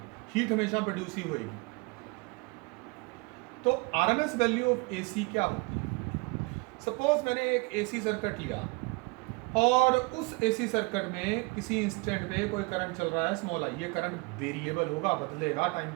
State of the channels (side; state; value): left; quieter; 28.1 dB